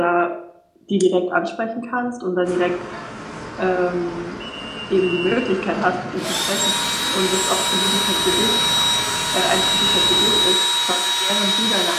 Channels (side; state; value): both; identical; correlation 1.00